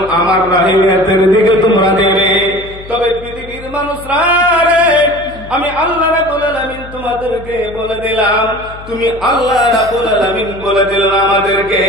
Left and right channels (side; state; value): left; noise; hum, 16 dB below the sound